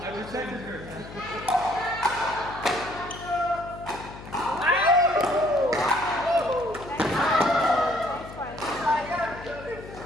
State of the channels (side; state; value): left; noise; hum, 14 dB below the sound